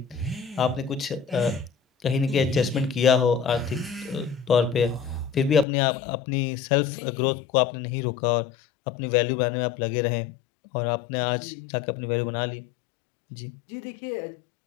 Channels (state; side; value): drops out; right; at 5.7 s